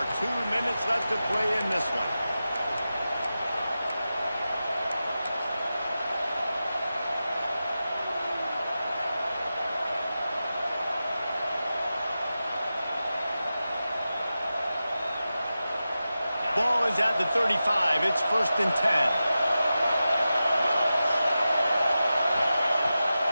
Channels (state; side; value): inverted; both; correlation -0.93